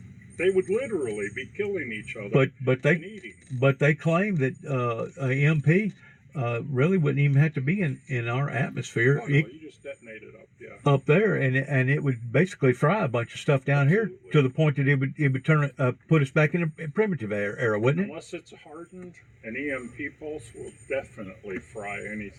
would literally be killing each other. But they claim that a MP really wouldn't even have to be in our atmosphere. Oh, no, you just detonate it up, yeah. Up there, and it would basically fry a bunch of stuff down here to the point that it would turn put us back in a primitive era, wouldn't it? Unless it's hardened, an EMP pulse will definitely fry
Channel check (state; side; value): identical; both; correlation 1.00